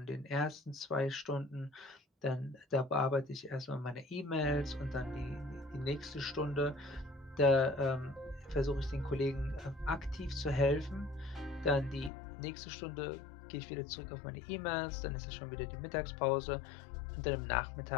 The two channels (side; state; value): right; drops out; at 12.1 s